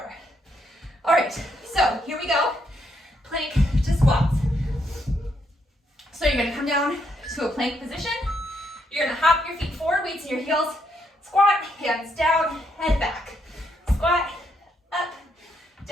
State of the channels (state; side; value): normal; both; correlation 0.76